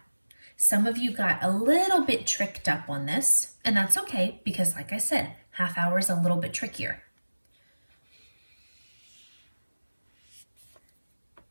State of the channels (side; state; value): both; inverted; correlation -1.00